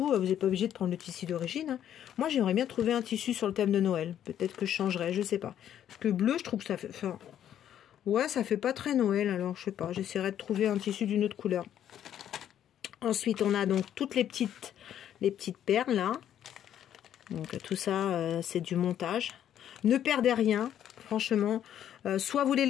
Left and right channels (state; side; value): quieter; right; 10.4 dB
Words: vous n'êtes pas obligé de prendre le tissu d'origine. Hein. Moi, j'aimerais bien trouver un tissu sur le thème de Noël. Peut-être que je changerai, je sais pas. Parce que bleu, je trouve que ça fait... Enfin, ouais, ça fait pas très Noël. Alors, je sais pas. J'essaierai de trouver un tissu d'une autre couleur. Ensuite, on a donc toutes les petites perles, là. Donc tout ça, c'est du montage. Ne perdez rien, franchement. Soit vous les